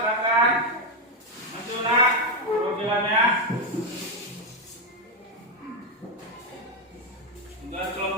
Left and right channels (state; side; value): normal; both; correlation 0.05